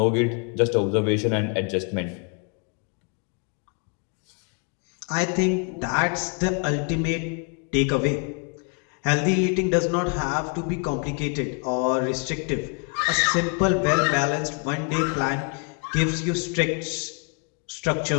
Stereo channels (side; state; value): right; quieter; 35.6 dB